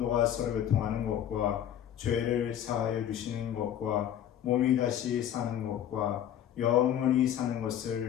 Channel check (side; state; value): right; quieter; 10.4 dB